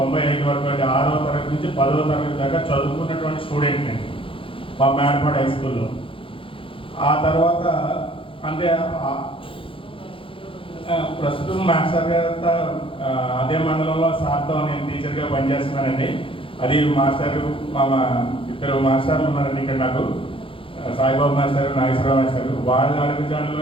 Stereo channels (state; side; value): late; right; 0.26 ms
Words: వరకు అంటే 6వ తరగతి నుంచి 10వ తరగతి దాకా చదువుకున్నటువంటి స్టూడెంట్ నేను మా మేడపాడు హై స్కూల్లో. ఆ తర్వాత అంటే ప్రస్తుతం మాస్టర్ గారు అదే మండలంలో సార్తో నేను టీచర్గా పనిచేస్తున్నానండి. అది మాస్టర్ మా ఇద్దరు మాస్టర్లు ఉన్నారండి ఇక్కడ నాకు, సాయిబాబు మాస్టర్, నాగేశ్వరరావు మాస్టర్. వాళ్ళ